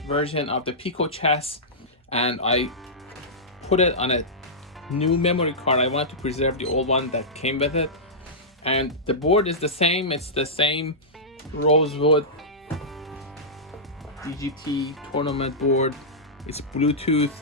version of the PicoChess and I put it on a new memory card. I wanted to preserve the old one that came with it. And the board is the same, it's the same rosewood DGT tournament board. It's Bluetooth.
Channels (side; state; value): both; normal; correlation -0.13